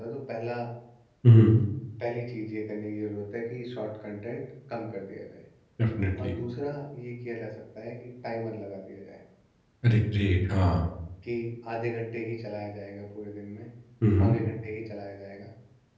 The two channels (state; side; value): identical; both; correlation 1.00